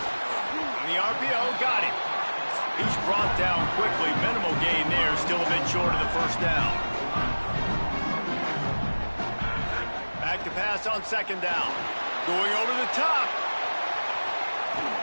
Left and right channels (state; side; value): inverted; both; correlation -1.00